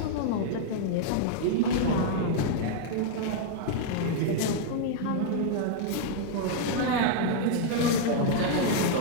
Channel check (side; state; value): both; different; correlation -0.01